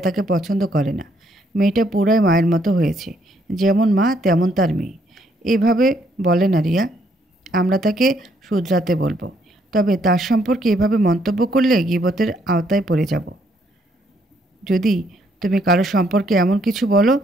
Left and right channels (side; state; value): both; normal; correlation 0.70